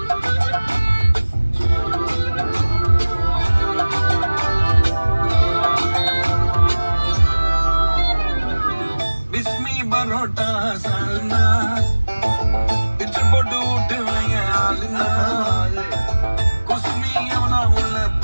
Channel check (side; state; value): both; inverted; correlation -1.00